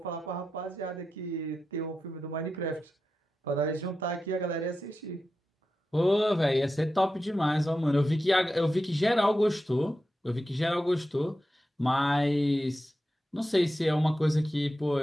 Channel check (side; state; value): both; normal; correlation 0.90